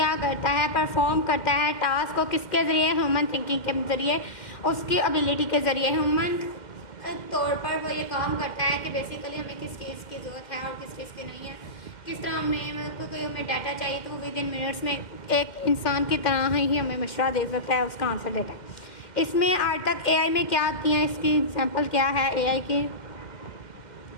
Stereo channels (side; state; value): right; late; 2.1 ms